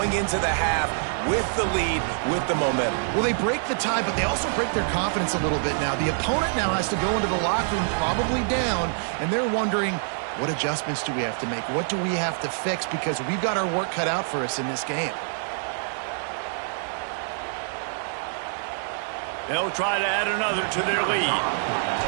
into the half with the lead, with the momentum? Well, they break the tie, but they also break their confidence a little bit now. The opponent now has to go into the locker room probably down, and they're wondering, what adjustments do we have to make? What do we have to fix? Because we've got our work cut out for us in this game. They'll try to add another to their lead.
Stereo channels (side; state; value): left; silent; digital silence